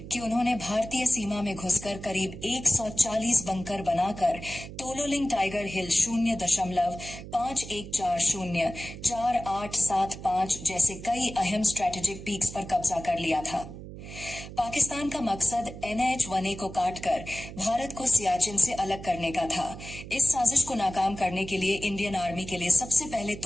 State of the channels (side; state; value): right; noise; hum, 12 dB below the sound